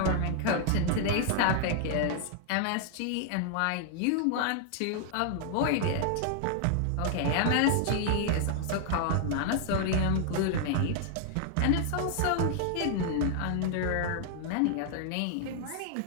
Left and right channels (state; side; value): different; both; correlation 0.00